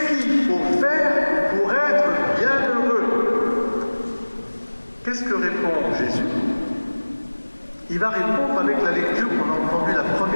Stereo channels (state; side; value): inverted; both; correlation -1.00